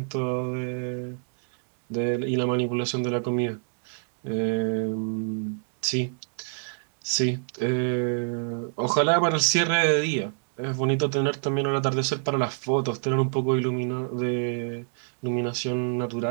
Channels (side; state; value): left; silent; digital silence